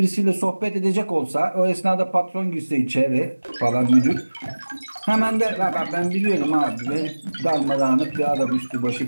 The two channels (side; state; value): both; inverted; correlation -1.00